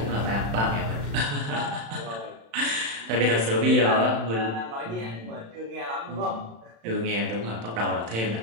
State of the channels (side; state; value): left; late; 35 ms